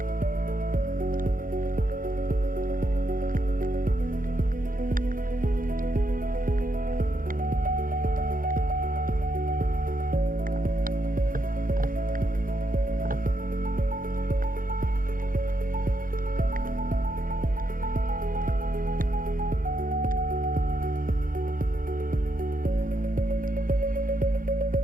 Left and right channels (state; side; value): late; left; 0.40 ms